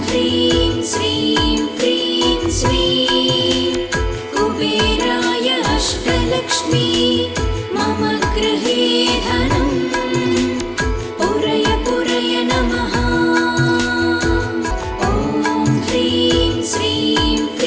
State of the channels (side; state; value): both; identical; correlation 1.00